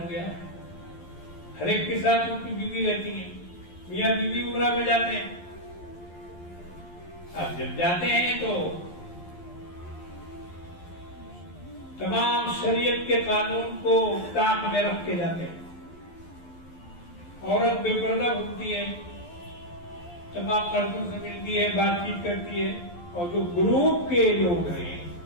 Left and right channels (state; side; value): late; right; 11 ms